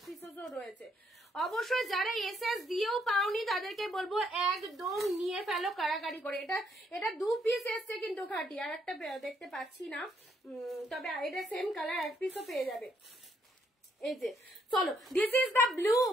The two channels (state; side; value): normal; both; correlation 0.72